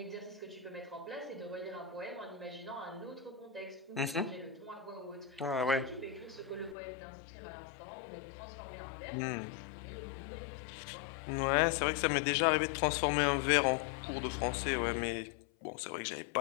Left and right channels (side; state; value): right; drops out; at 6.8 s